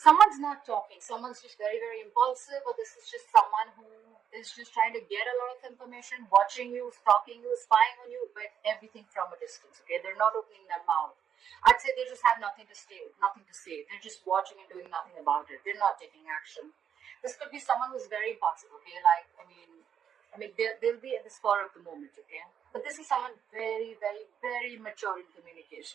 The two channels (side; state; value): left; quieter; 8.4 dB